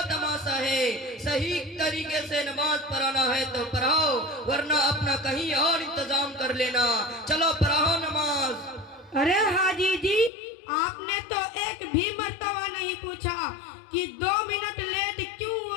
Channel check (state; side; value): drops out; right; at 10.3 s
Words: تماشا ہے؟ صحیح طریقے سے نماز پڑھانا ہے تو پڑھاؤ، ورنہ اپنا کہیں اور انتظام کر لینا۔ چلو پڑھاؤ نماز۔ ارے حاجی جی آپ نے تو ایک بھی مرتبہ نہیں پوچھا کہ 2 منٹ لیٹ کیوں